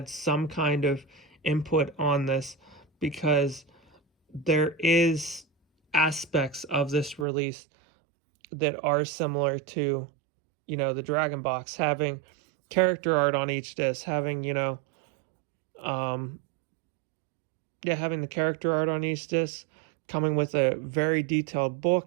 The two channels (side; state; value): left; drops out; at 7.2 s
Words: some kind of input on this, because there is aspects of this release that are similar to, the Dragon box, having character art on each disc, having, having the character art on each disc, coming with a very detailed